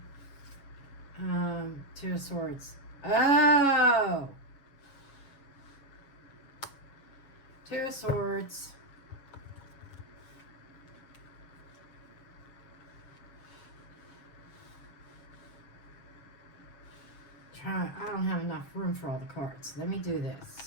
Two of Swords. Oh! Two of Swords. I don't have enough room for all the cards. Let me do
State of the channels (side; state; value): right; late; 7.2 ms